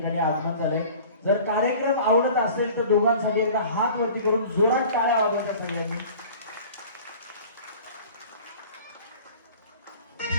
आगमन झाले. जर कार्यक्रम आवडत असेल तर दोघांसाठी एकदा हात वरती करून जोरात टाळ्या वाजवायच्या सगळ्यांनी.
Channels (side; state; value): both; inverted; correlation -0.44